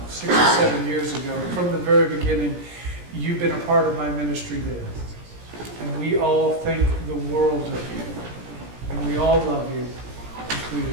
6 or 7 years ago. From the very beginning, you've been a part of my ministry there. And we all think the world of you. And we all love you,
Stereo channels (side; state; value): left; late; 17 ms